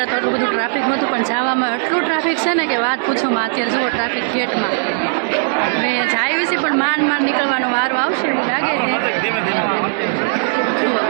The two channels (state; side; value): silent; left; digital silence